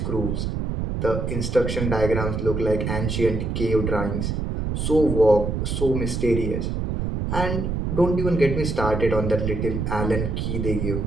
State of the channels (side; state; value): right; noise; rumble, 2 dB below the sound